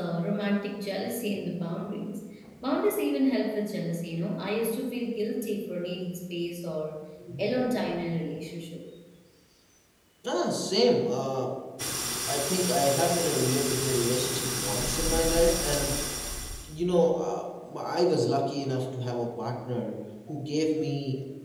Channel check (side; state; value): both; identical; correlation 1.00